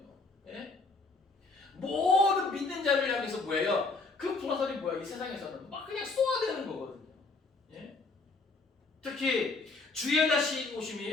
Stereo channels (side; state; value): right; quieter; 3.8 dB